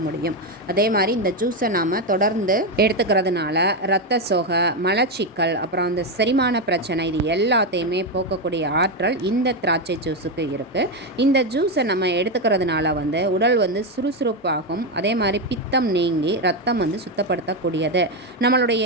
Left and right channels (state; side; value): normal; both; correlation 0.08